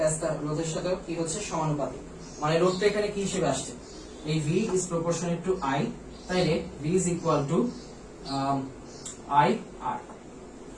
রোধের সাথে কি হচ্ছে সমানুপাতিক, মানে রোধটা এখানে কি হিসেবে আসছে, এই V is proportionate to I, তাইলে V is equal to I R,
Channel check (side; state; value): both; identical; correlation 1.00